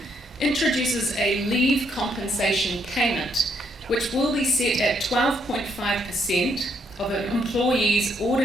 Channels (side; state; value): both; normal; correlation 0.73